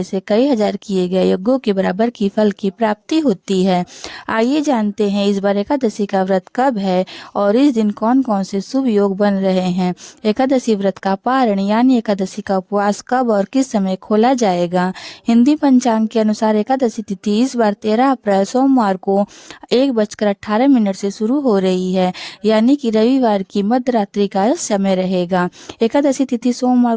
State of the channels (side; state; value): both; identical; correlation 1.00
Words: से कई हजार किए गए यज्ञों के बराबर की फल की प्राप्ति होती है। आइए जानते हैं इस बार एकादशी का व्रत कब है और इस दिन कौन कौन से शुभ योग बन रहे हैं। एकादशी व्रत का पारण यानी एकादशी का उपवास कब और किस समय खोला जाएगा। हिंदी पंचांग के अनुसार एकादशी तिथि इस बार 13 अप्रैल सोमवार को 1:18 से शुरू हो रही है, यानी कि रविवार की मध्य रात्रि का समय रहेगा। एकादशी तिथि